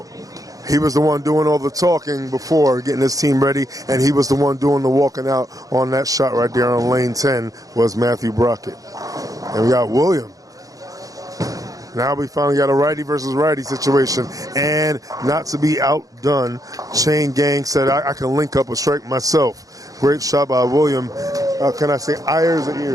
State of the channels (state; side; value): late; left; 0.17 ms